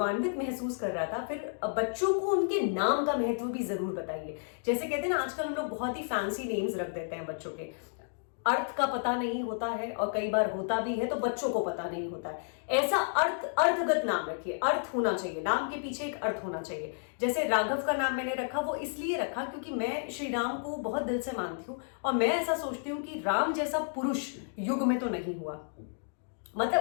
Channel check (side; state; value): right; silent; digital silence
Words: महसूस कर रहा था। फिर बच्चों को उनके नाम का महत्व भी जरूर बताइए। जैसे कहते हैं ना, आजकल हम लोग बहुत ही फैंसी नेम्स रख देते हैं बच्चों के, अर्थ का पता नहीं होता है और कई बार होता भी है तो बच्चों को पता नहीं होता है। ऐसा अर्थगत नाम रखिए, अर्थ होना चाहिए, नाम के पीछे एक अर्थ होना चाहिए। जैसे राघव का नाम मैंने रखा, वो इसलिए रखा क्योंकि मैं श्री राम को बहुत दिल से मानती हूँ और मैं ऐसा सोचती हूँ कि राम जैसा पुरुष युग में तो नहीं हुआ,